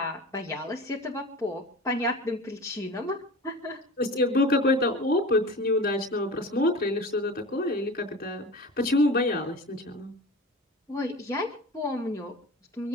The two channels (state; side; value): normal; both; correlation 0.34